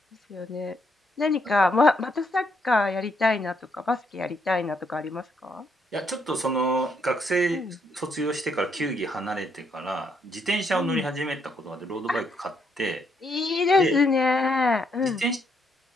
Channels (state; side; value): normal; both; correlation 0.74